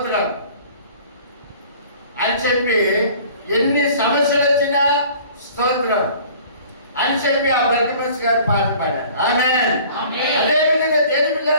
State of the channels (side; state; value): both; inverted; correlation -0.49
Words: అని చెప్పి, ఎన్ని సమస్యలు వచ్చినా స్తోత్రం అని చెప్పి ఆ బర్గమస్ గారు పాట పాడారు. ఆమేన్. అదేవిధంగా దేవుని